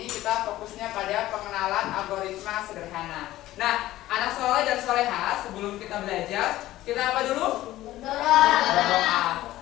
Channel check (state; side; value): quieter; right; 15.4 dB